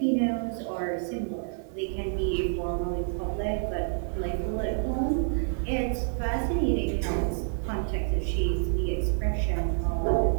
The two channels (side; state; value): left; silent; digital silence